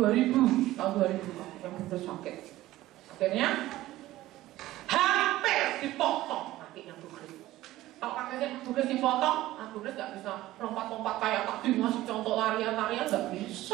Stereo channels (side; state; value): left; quieter; 16.0 dB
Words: yang benar sakit. Akhirnya hampir dipotong kakinya Bu Grace. Kalau kakinya Bu Grace dipotong, Bu Grace gak bisa lompat-lompat kayak tadi ngasih contoh larian-larian, gak